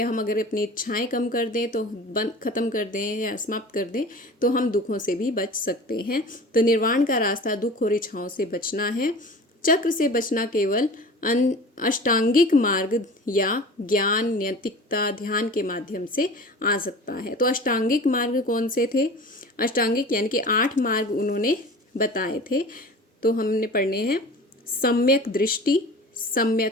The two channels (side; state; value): both; normal; correlation 0.39